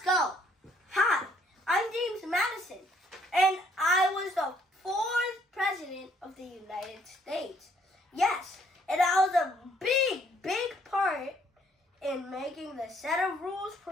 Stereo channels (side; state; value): both; normal; correlation 0.65